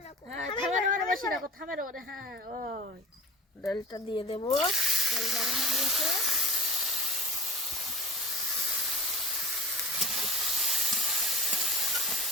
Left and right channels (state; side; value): normal; both; correlation 0.37